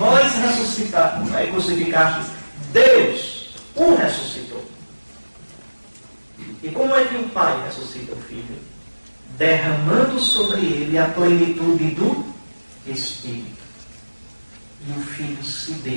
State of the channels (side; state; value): both; inverted; correlation -1.00